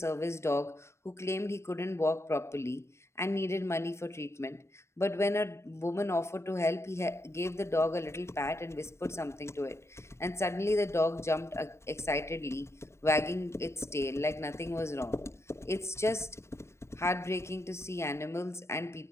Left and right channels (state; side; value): late; right; 0.13 ms